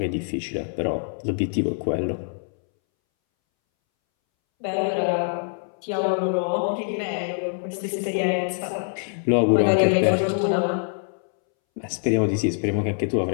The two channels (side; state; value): right; silent; 62 dB below the other